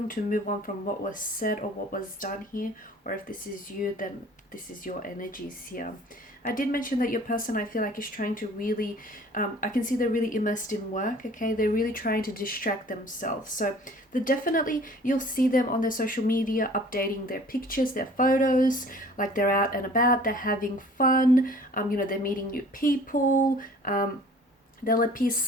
to move on from what was said or what was done here, or if this is you, then this is your energies here. I did mention that your person, I feel like, is trying to really, I can see they're really immersed in work, okay? They're really trying to distract themselves. So definitely, you'll see them on their social media updating their pictures, their photos, like they're out and about, they're having fun, they're meeting new people, they'll appear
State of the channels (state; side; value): normal; both; correlation 0.49